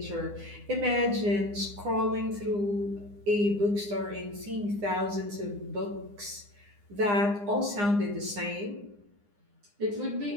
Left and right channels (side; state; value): left; late; 9.8 ms